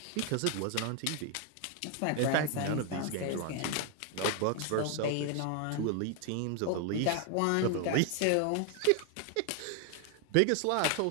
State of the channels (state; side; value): different; both; correlation 0.01